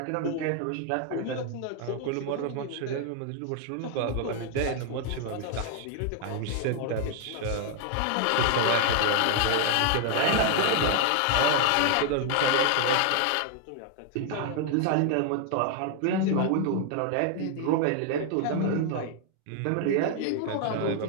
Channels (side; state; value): both; different; correlation 0.00